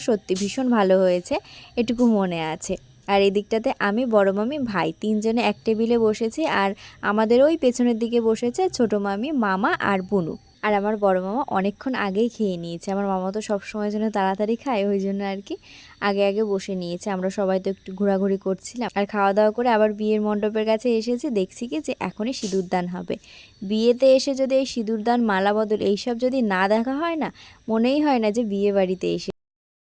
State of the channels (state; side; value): identical; both; correlation 1.00